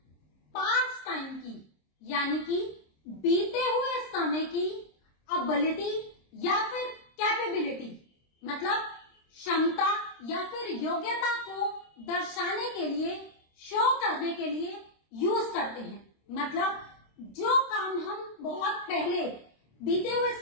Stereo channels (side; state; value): right; late; 26 ms